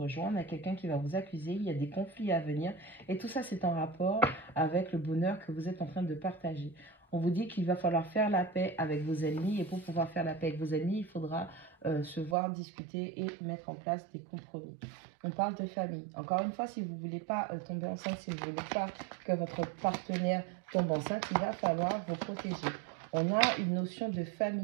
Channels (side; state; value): left; drops out; at 12.4 s